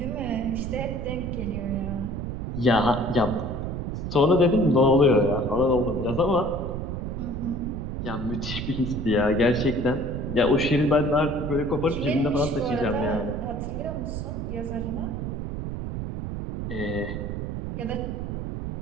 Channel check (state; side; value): noise; right; rumble, 4 dB below the sound